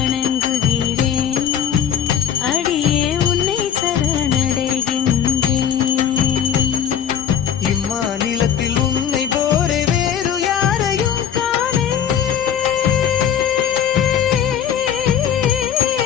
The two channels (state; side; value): quieter; right; 8.8 dB